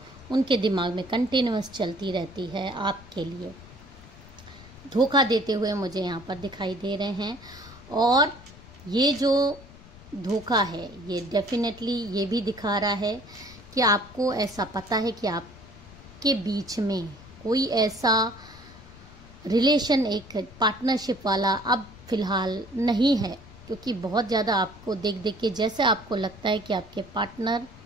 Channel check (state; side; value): noise; left; rumble, 20 dB below the sound